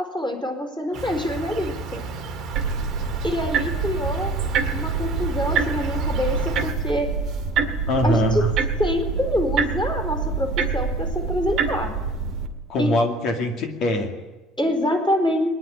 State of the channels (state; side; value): normal; both; correlation 0.47